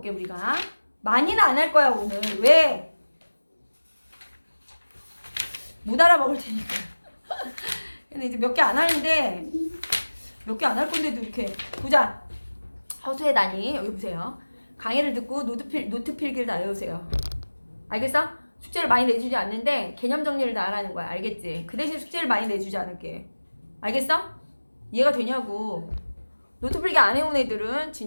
우리가 많이는 안 할 거야 오늘. 왜? 못 알아먹을 테니까. 근데 이제 몇 개 안 하는데 몇 개 안 할 건데도 이렇게 보자. 허수의 단위 여기 보세요. 강의를 듣고 노트 필기를 다 외우세요. 알겠어? 숙제를 많이 내주지 않는데 개념 정리를 다 하라는 거야. 알겠지? 그 대신 숙제를 많이 내주지 않을게. 알겠어? 이해가 되냐고. 노트 필기 안 해온 애들은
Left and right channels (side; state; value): both; inverted; correlation -1.00